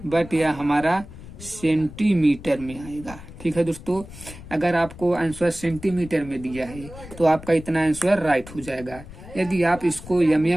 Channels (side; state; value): left; noise; rumble, 15 dB below the sound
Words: बट यह हमारा सेंटीमीटर में आएगा। ठीक है दोस्तों, अगर आपको आंसर सेंटीमीटर में दिया है तो आपका इतना आंसर राइट हो जाएगा। यदि आप इसको